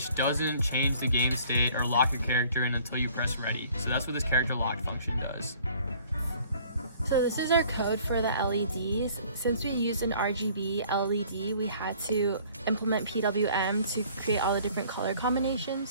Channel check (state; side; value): inverted; both; correlation -0.55